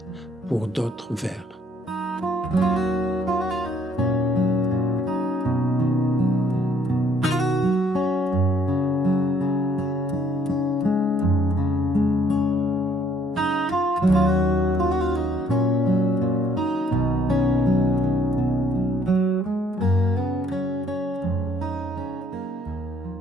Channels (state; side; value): normal; both; correlation 0.65